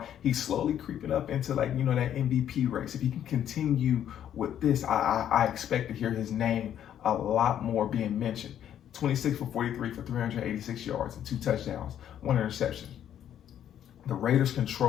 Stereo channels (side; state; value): right; quieter; 10.2 dB